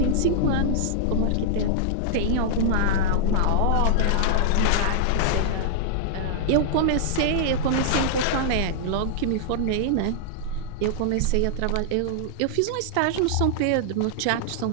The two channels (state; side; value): different; both; correlation -0.01